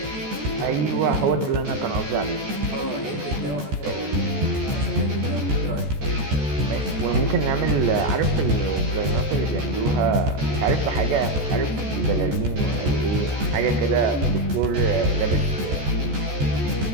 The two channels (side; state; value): left; late; 14 ms